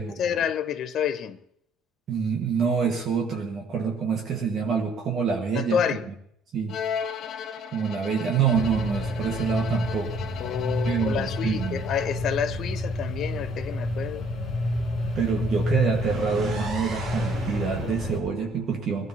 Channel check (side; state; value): both; normal; correlation 0.60